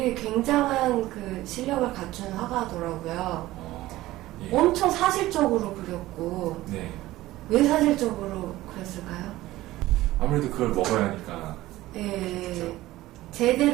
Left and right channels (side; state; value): left; quieter; 16.7 dB